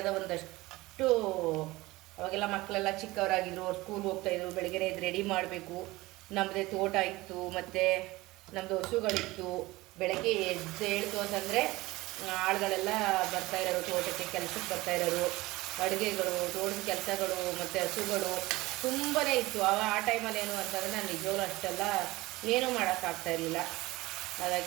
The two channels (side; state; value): left; quieter; 20.0 dB